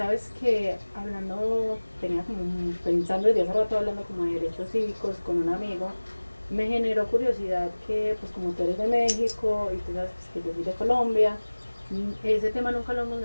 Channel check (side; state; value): both; inverted; correlation -1.00